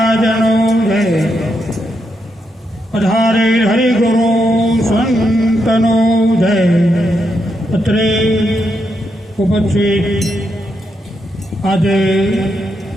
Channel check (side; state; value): both; normal; correlation 0.82